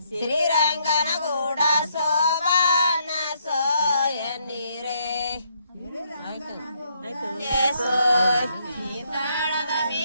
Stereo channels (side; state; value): both; inverted; correlation -0.72